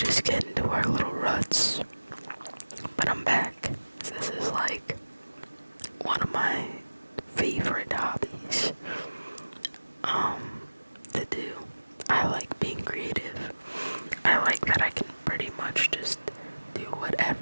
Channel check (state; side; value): inverted; both; correlation -1.00